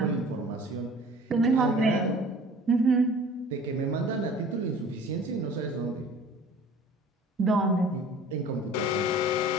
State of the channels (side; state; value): both; normal; correlation 0.46